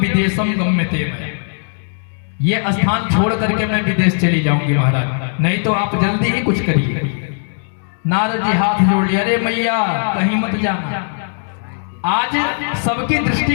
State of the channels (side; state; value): right; silent; digital silence